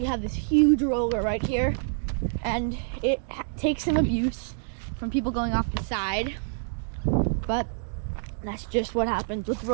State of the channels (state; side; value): silent; left; digital silence